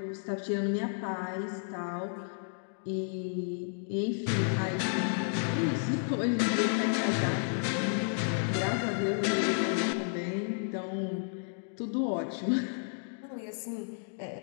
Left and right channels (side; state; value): right; silent; digital silence